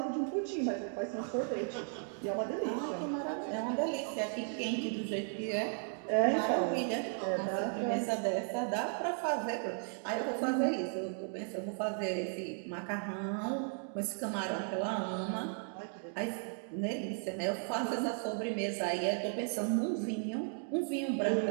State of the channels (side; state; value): left; silent; 54 dB below the other